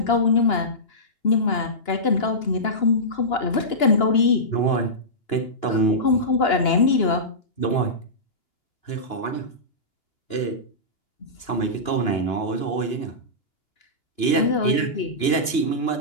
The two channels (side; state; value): right; late; 2.9 ms